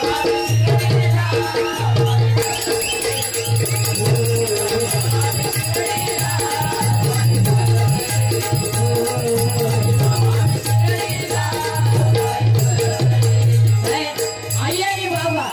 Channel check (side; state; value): both; identical; correlation 1.00